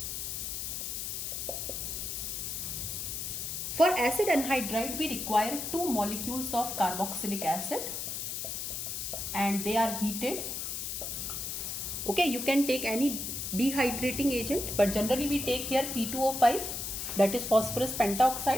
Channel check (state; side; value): noise; left; hiss, 4 dB below the sound